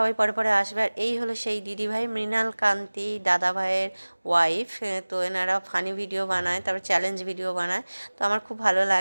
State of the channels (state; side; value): inverted; both; correlation -1.00